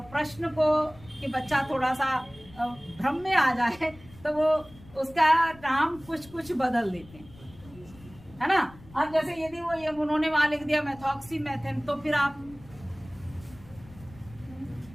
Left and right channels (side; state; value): left; noise; rumble, 21 dB below the sound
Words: प्रश्न को कि बच्चा थोड़ा सा भ्रम में आ जाए तो वो उसका नाम कुछ बदल देते हैं, है ना। अब जैसे यदि वो ये उन्होंने वहां लिख दिया मेथॉक्सीमेथेन तो फिर आप